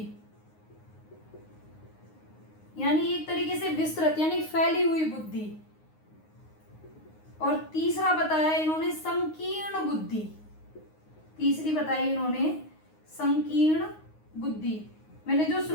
यानी एक तरीके से विस्तृत यानी फैली हुई बुद्धि, और तीसरा बताया इन्होंने संकीर्ण बुद्धि। तीसरी बताई इन्होंने संकीर्ण बुद्धि। मैंने जो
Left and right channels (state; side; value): late; right; 9.6 ms